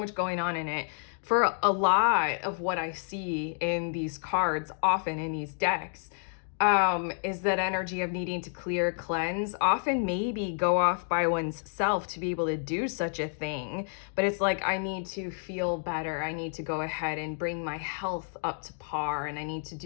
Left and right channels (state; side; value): silent; right; 58 dB below the other